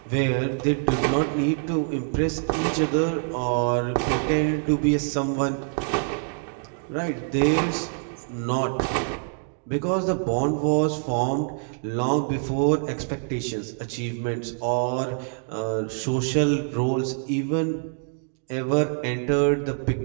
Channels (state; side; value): silent; left; 61 dB below the other